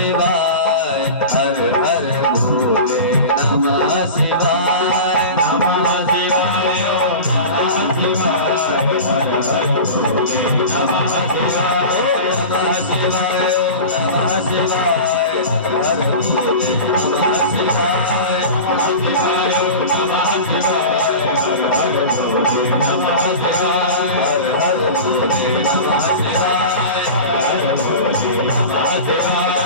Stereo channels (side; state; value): both; inverted; correlation -0.32